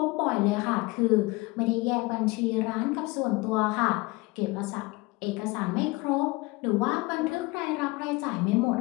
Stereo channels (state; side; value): quieter; right; 23.3 dB